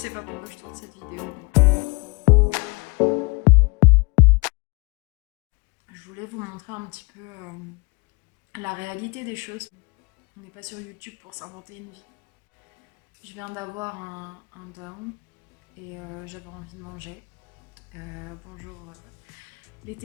pas pourquoi je tourne cette vidéo. Je voulais vous montrer un petit peu la réalité des choses. On n'est pas sur YouTube pour s'inventer une vie. Je viens d'avoir un down et j'avais envie de manger. Bonjour les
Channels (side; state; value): right; quieter; 28.1 dB